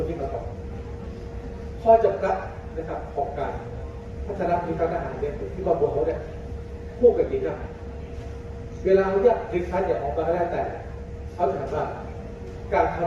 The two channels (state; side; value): identical; both; correlation 1.00